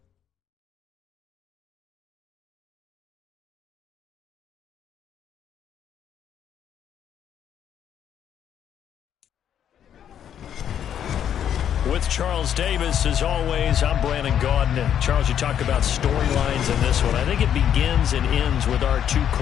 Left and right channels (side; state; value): right; quieter; 9.5 dB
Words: With Charles Davis, as always, I'm Brandon Gaudin. Charles, you talk about storylines in this one. I think it begins and ends with our two